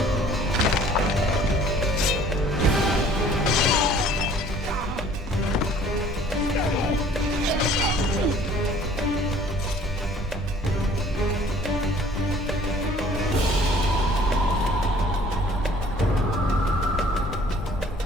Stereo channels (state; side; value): normal; both; correlation 0.54